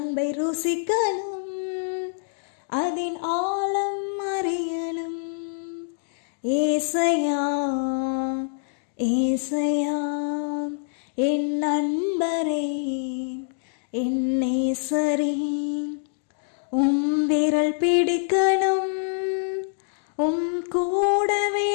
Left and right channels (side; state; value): right; silent; digital silence